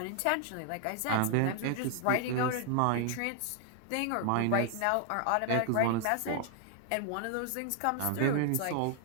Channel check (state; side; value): different; both; correlation 0.00